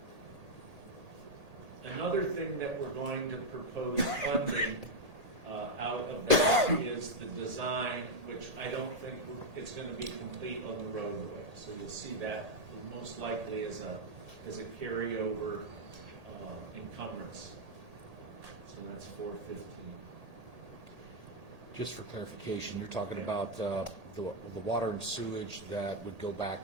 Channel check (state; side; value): late; left; 1.8 ms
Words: Another thing that we're going to propose funding out of that is the design, which I don't think it's going to be complete on the roadway. So you'll see that most likely as a carryover encumbrance. So that's 415. Just for clarification, you're talking about the water and sewage that would go